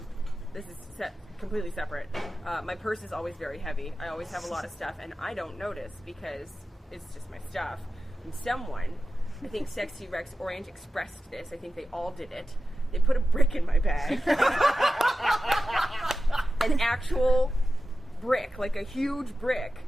this is completely separate. My purse is always very heavy. I always have a lot of stuff, and I don't notice because it's just my stuff. And someone, I think Sexy Rex Orange expressed this. I think they all did it. They put a brick in my bag. An actual brick, like a huge brick.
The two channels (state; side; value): normal; both; correlation 0.93